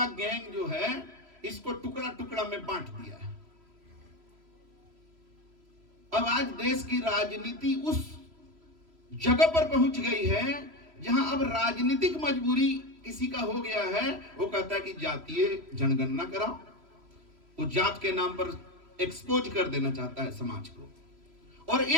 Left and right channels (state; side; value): late; left; 3.0 ms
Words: गैंग जो है, इसको टुकड़ा टुकड़ा में बांट दिया है। अब आज देश की राजनीति उस जगह पर पहुंच गई है जहां अब राजनीतिक मजबूरी किसी का हो गया है। वो कहता है कि जातीय जनगणना कराओ। वो जात के नाम पर एक्सपोज कर देना चाहता है समाज को। और